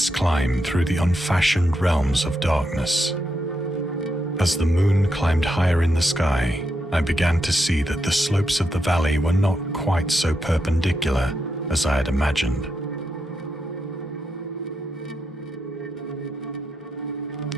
climb through the unfashioned realms of darkness. As the moon climbed higher in the sky, I began to see that the slopes of the valley were not quite so perpendicular as I had imagined.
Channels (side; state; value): both; normal; correlation 0.83